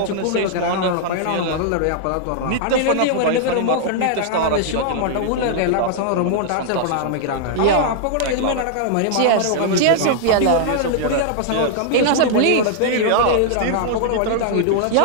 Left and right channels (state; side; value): different; both; correlation -0.01